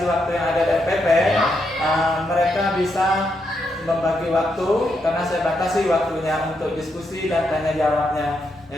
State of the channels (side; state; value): both; normal; correlation 0.80